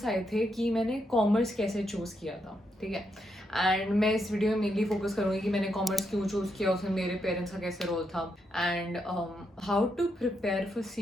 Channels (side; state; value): both; normal; correlation 0.81